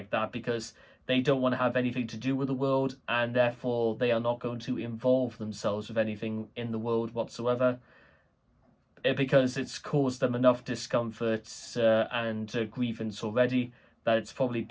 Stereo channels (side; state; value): both; identical; correlation 1.00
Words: that because they don't want to have anything to do with the world, and therefore they are not going to involve themselves with anything in the world whatsoever, because it's caused them enough discomfort and grievance already that it's probably